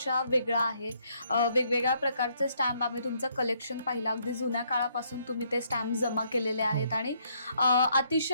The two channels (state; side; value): inverted; both; correlation -0.70